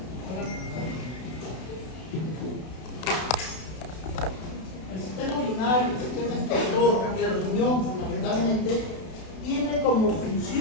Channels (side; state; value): right; late; 32 ms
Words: El sistema urinario, el sistema excretor, el riñón fundamentalmente, tiene como